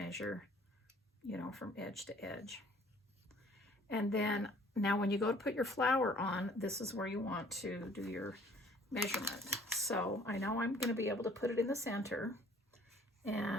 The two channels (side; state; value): both; normal; correlation 0.56